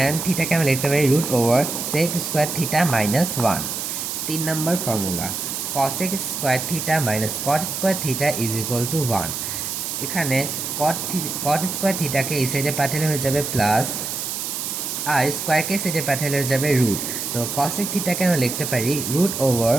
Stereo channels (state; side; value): noise; right; hiss, 4 dB below the sound